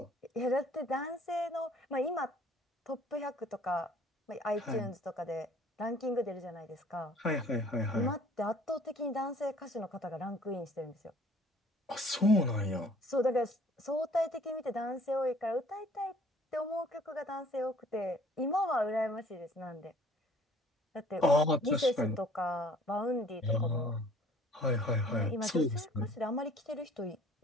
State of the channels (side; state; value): both; normal; correlation 0.55